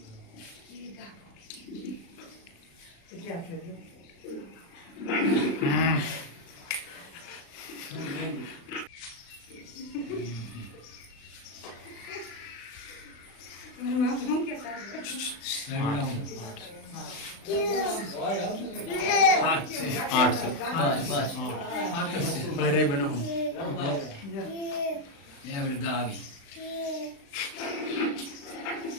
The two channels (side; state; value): right; late; 36 ms